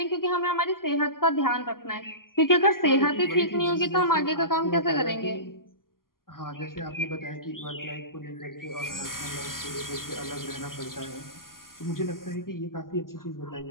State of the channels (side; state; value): right; late; 0.91 ms